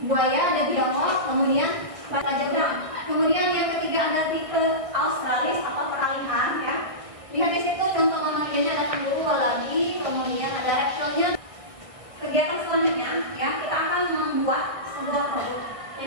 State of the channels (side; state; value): left; late; 1.6 ms